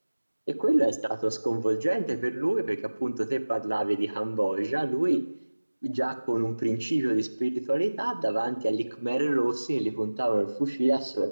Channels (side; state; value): both; inverted; correlation -1.00